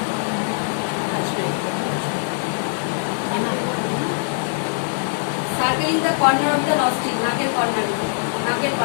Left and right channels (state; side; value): silent; right; digital silence